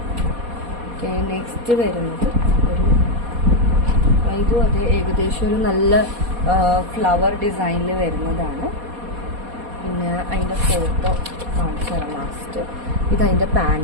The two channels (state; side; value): late; left; 4.2 ms